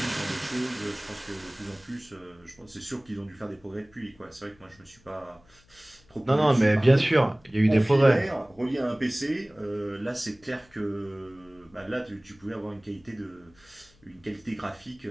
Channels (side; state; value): left; noise; hum, 30 dB below the sound